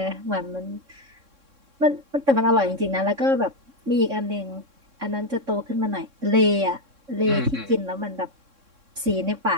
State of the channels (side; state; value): left; late; 3.6 ms